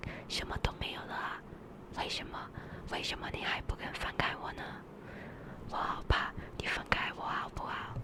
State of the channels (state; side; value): identical; both; correlation 1.00